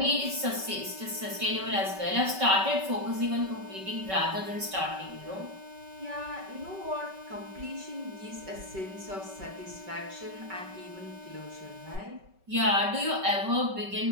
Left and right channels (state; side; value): late; left; 5.3 ms